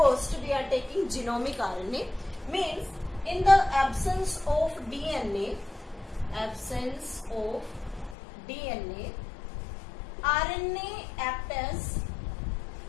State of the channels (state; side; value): drops out; right; at 8.2 s